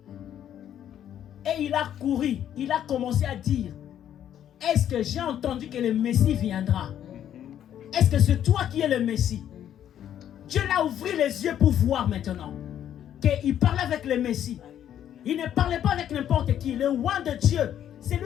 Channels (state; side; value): quieter; right; 10.4 dB